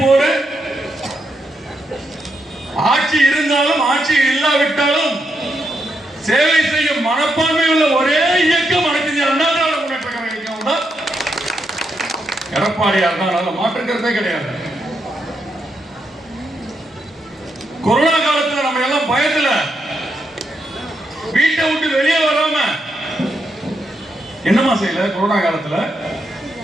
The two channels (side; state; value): both; normal; correlation 0.81